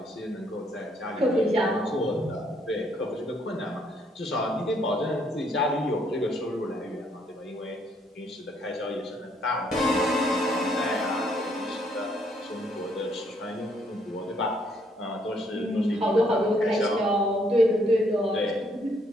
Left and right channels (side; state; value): both; normal; correlation 0.69